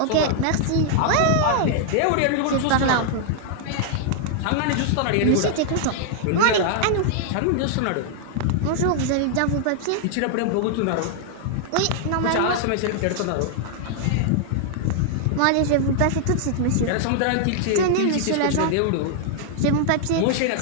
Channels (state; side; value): different; both; correlation -0.01